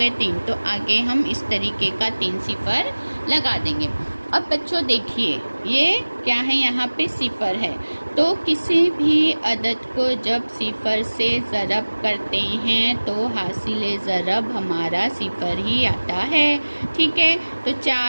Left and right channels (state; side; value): inverted; both; correlation -1.00